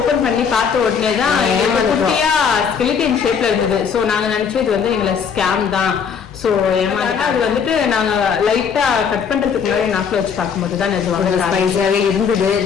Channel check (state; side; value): quieter; right; 6.7 dB